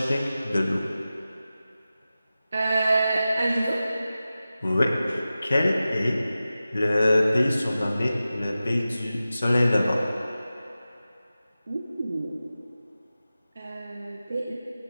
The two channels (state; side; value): inverted; both; correlation -0.94